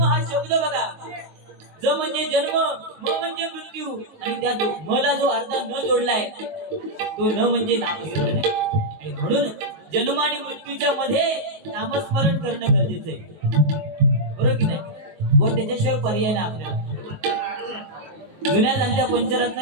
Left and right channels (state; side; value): late; left; 19 ms